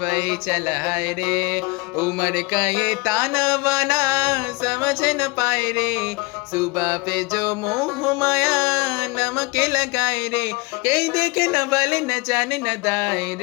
चला है रे। उम्र का ये ताना बाना समझ न पाए रे, सुबह पे जो मोह माया नमक लगाए रे। कहीं देखे न बले न जाने न दाए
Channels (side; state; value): right; quieter; 26.0 dB